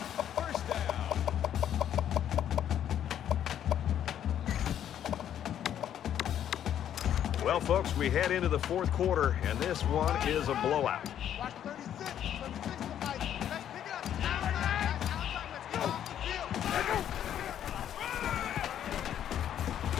First down. Well, folks, we head into the 4th quarter, and this one is a blowout. Watch 36 Mike. Let's pick it up. Outside. Let's go.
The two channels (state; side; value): quieter; right; 10.2 dB